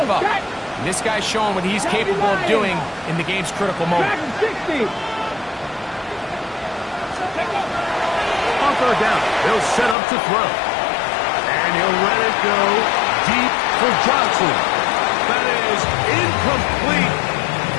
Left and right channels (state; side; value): drops out; right; at 10.0 s